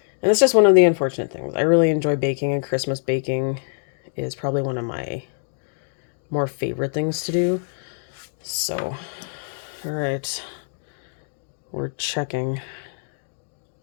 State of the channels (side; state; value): right; silent; digital silence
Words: And it's just one of the unfortunate things. I really enjoy baking, and Christmas baking is probably one of my more favorite things to do. So, all right, we're checking.